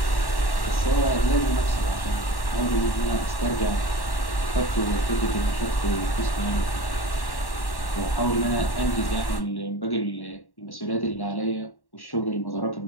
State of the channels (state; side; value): late; right; 1.1 ms